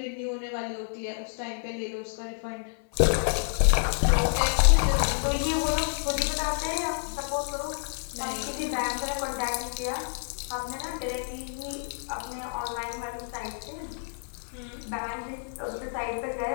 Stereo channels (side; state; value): right; silent; 59 dB below the other